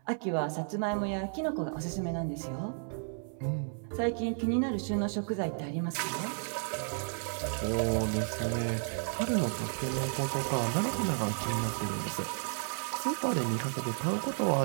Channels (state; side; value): silent; left; 56 dB below the other